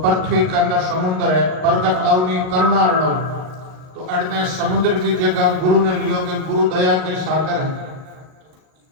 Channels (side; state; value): left; late; 38 ms